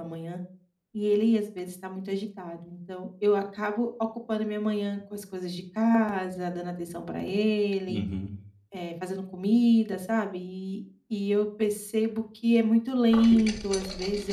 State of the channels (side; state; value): both; identical; correlation 1.00